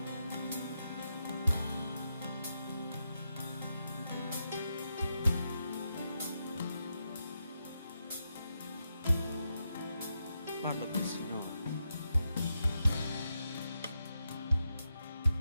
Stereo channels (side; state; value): both; inverted; correlation -0.84